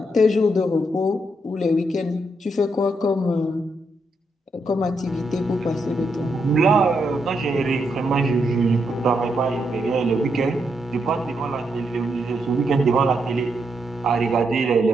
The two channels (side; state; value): both; normal; correlation 0.80